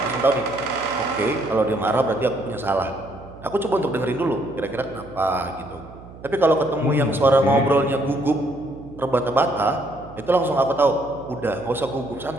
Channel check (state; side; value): noise; right; hum, 18 dB below the sound